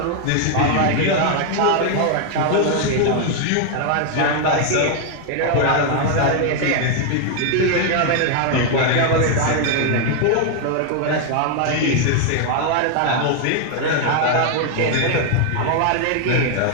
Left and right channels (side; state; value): both; different; correlation 0.00